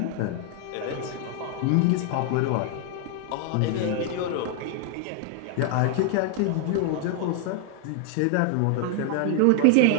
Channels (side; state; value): both; different; correlation 0.00